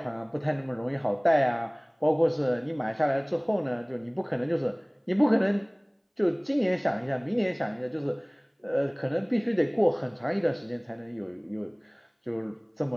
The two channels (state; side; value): identical; both; correlation 1.00